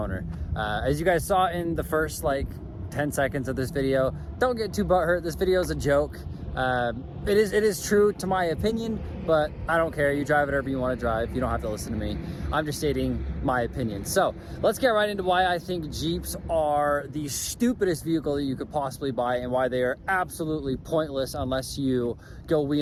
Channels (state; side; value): identical; both; correlation 1.00